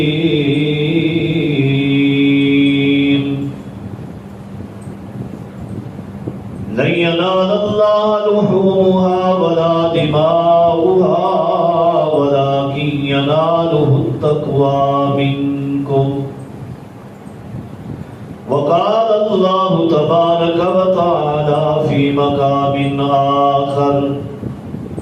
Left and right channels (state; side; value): identical; both; correlation 1.00